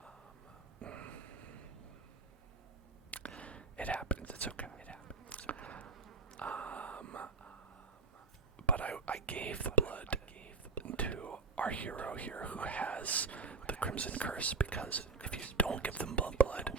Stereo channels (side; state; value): left; quieter; 4.2 dB